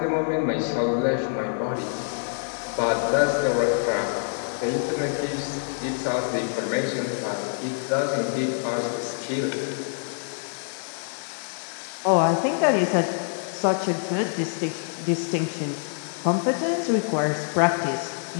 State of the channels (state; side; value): silent; right; 61 dB below the other